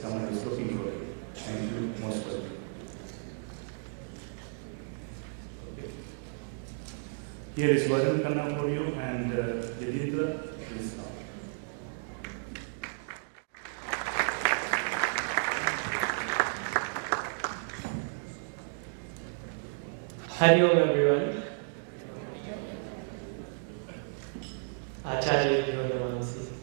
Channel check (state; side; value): silent; left; digital silence